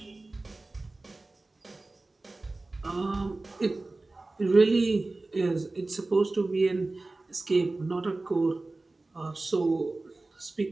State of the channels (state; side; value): quieter; left; 3.2 dB